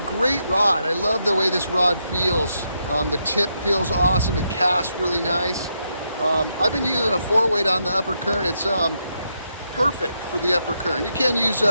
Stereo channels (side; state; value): both; inverted; correlation -0.81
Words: great rod. I love the way this rod feels. The tip feels awesome. It casts really nice. I've been using a 4-weight on the Upper Kern. It's perfect for the Upper Kern. You can use